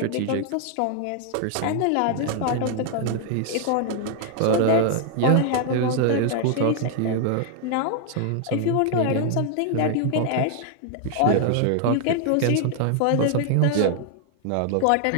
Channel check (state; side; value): different; both; correlation 0.00